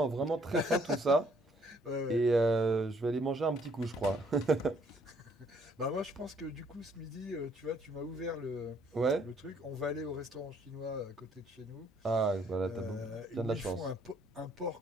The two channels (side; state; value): both; normal; correlation 0.65